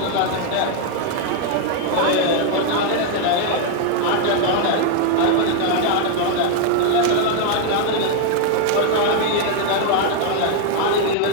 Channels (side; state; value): both; different; correlation 0.01